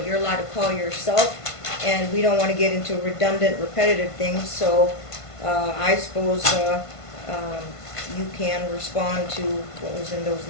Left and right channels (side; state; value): right; late; 1.5 ms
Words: you're allowed to call yourself, and we don't want to get into redundant, repetitive things, so I suppose you can respond to what was in those